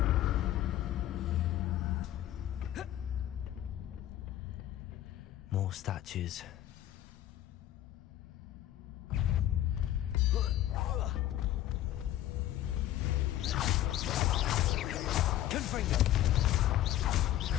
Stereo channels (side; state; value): right; quieter; 13.0 dB